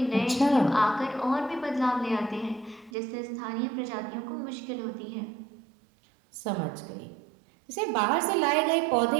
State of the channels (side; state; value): left; drops out; at 2.9 s